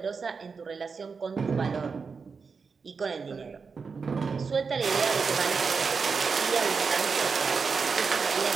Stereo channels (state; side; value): quieter; left; 5.2 dB